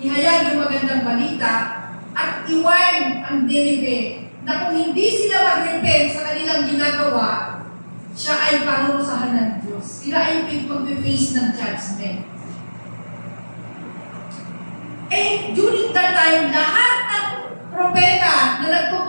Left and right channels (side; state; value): both; inverted; correlation -1.00